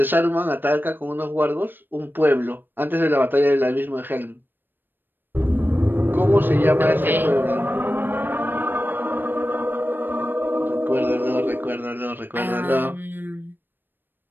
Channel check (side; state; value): left; late; 0.094 ms